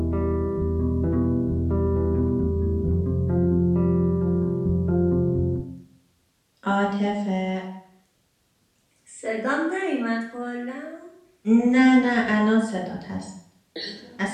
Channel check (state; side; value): identical; both; correlation 1.00